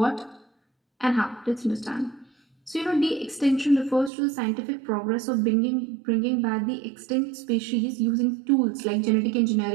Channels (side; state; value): left; drops out; at 4.1 s